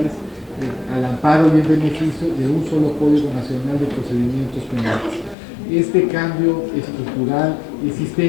al amparo y en beneficio de un solo Código Nacional de Procedimientos Penales. Este cambio estructural y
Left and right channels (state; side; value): drops out; right; at 5.4 s